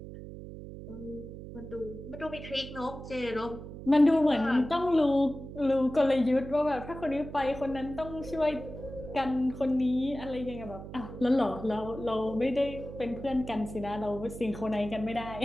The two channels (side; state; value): right; noise; hum, 11 dB below the sound